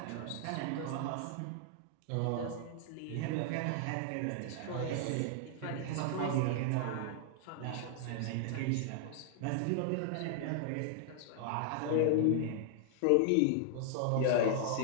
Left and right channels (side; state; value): both; different; correlation 0.00